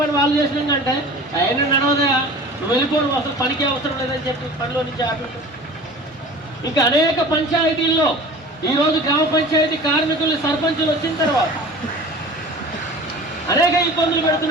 వాళ్ళు చేసినాకంటే ఆయన నడవదయా, నువ్వు వెళ్ళిపోను, అసలు పనికి అవసరం లేదని చెప్పి పనిలో నుంచి ఆపిండు. ఇంకా అనేక పంచాయతీల్లో ఈరోజు గ్రామ పంచాయతీ కార్మికులు సర్పంచులు వచ్చిన తర్వాత అనేక ఇబ్బందులు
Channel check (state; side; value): normal; both; correlation 0.40